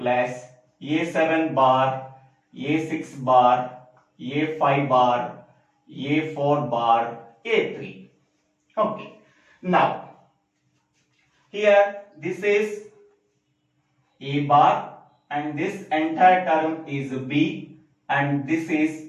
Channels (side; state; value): both; identical; correlation 1.00